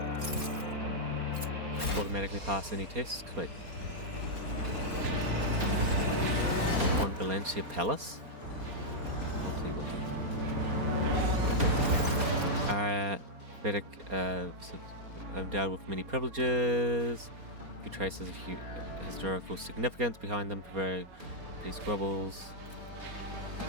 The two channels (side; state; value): left; late; 4.3 ms